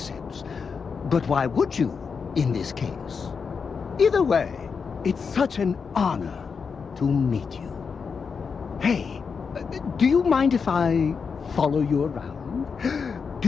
But why would you, in this case? Either way, it's such an honor to meet you. Hey, do you mind if I follow you around? Do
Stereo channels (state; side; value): quieter; right; 5.7 dB